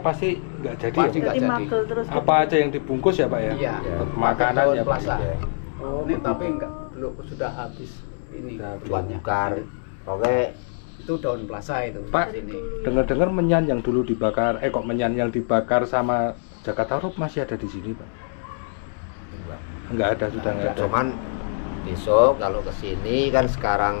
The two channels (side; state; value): right; silent; digital silence